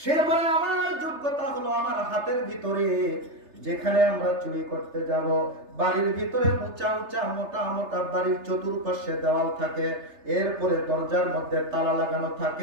বলে, আমার যোগ্যতা হলো আমার হাতের ভিতরে যেখানে আমরা চুরি করতে যাব, বাড়ির ভিতরে উঁচা উঁচা মোটা মোটা বাড়ির চতুর্পাশে দেওয়াল থাকে, এরপরে দরজার মধ্যে তালা লাগানো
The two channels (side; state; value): left; late; 3.3 ms